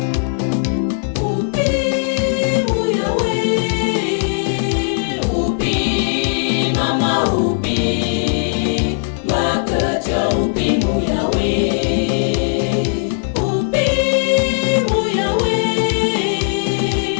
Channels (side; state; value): right; silent; digital silence